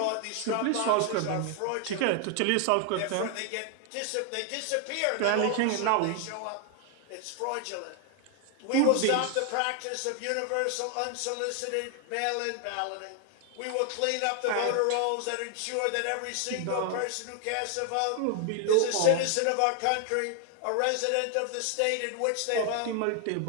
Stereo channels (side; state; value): both; different; correlation 0.00